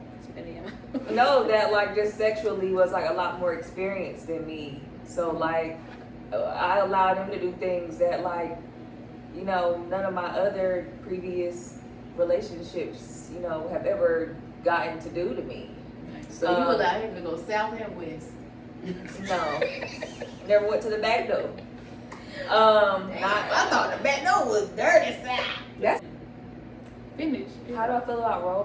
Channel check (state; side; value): identical; both; correlation 1.00